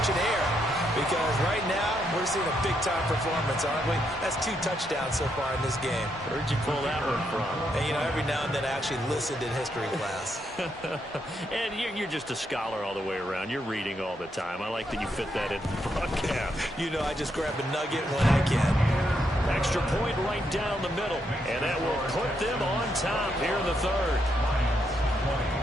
air because right now we're We're seeing a big-time performance, aren't we? That's 2 touchdowns so far in this game. Where'd you pull that one from? And, you know, every now and then I actually listened in history class. And you're just a scholar all the way around. You're reading all the time. I like that you fit that in the broadcast. You know, I just grab a nugget when I can. Extra point right down the middle. And that will put them on top here in the third.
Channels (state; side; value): normal; both; correlation 0.78